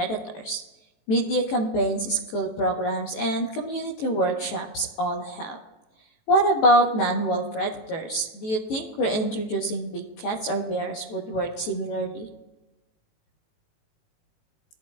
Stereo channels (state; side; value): late; right; 18 ms